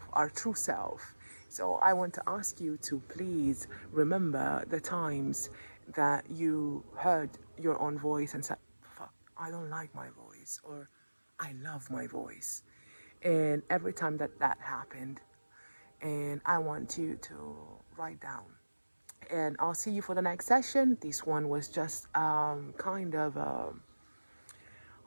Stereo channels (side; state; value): both; inverted; correlation -1.00